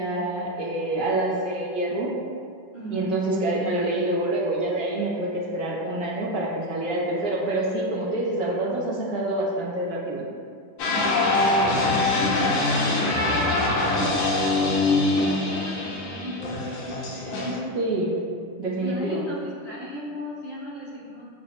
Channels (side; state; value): right; late; 11 ms